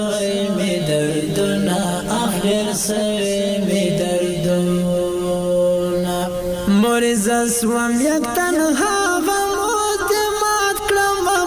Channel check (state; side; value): identical; both; correlation 1.00